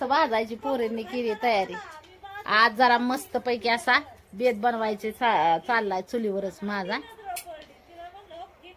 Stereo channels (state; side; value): identical; both; correlation 1.00